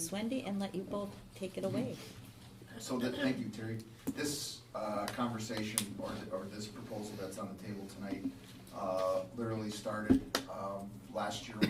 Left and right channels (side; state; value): both; identical; correlation 1.00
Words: Wendy and let you both take it away. So thank you, Terry. This conversation or this proposal that's on the table tonight literally started last year